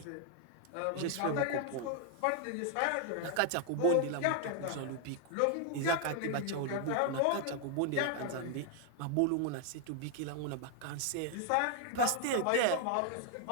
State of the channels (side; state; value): both; different; correlation 0.00